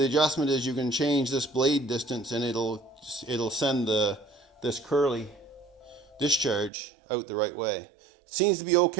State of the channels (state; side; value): drops out; left; at 6.7 s